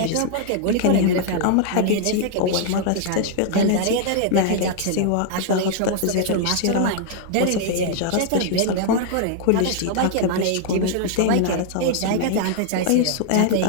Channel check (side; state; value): both; different; correlation 0.00